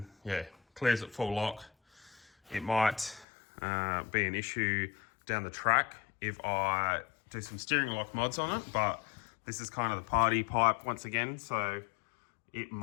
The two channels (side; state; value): right; drops out; at 3.2 s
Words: yeah, clears it full lock it might be an issue down the track if I do some steering lock mods on it, but this is kind of the party pipe once again, so it